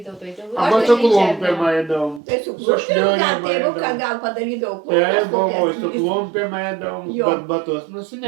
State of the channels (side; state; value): left; drops out; at 2.2 s